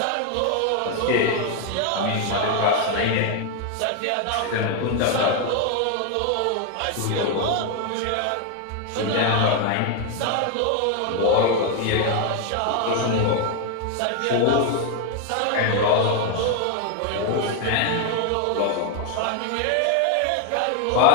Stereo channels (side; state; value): both; different; correlation 0.01